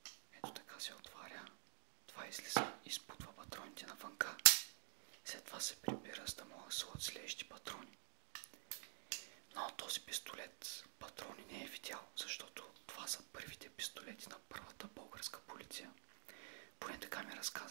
Ето така се отваря. Това излиза и изпутва патроните навънка. След това се прибира, за да могат да слагат следващи патрони. Но този пистолет патрони не е видял, защото това са първите пистолети на първата българска полиция. Поне така ми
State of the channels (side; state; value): left; silent; digital silence